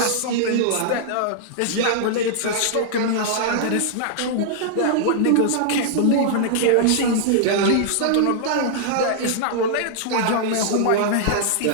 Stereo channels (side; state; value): both; different; correlation -0.01